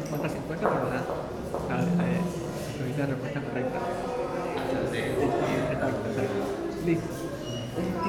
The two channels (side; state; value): both; identical; correlation 1.00